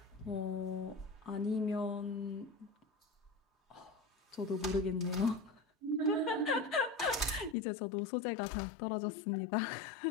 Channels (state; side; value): drops out; right; at 7.6 s